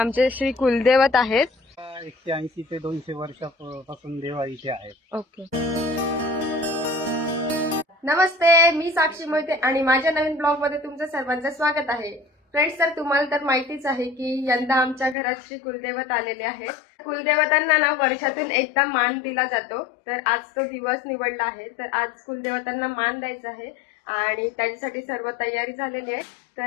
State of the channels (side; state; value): right; drops out; at 15.2 s